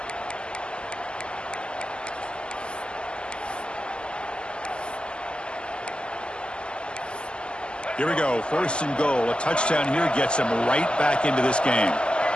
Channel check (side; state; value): right; late; 0.050 ms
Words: Here we go, 1st and goal. A touchdown here gets him right back into this game.